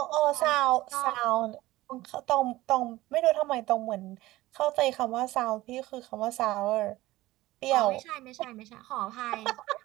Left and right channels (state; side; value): quieter; left; 17.6 dB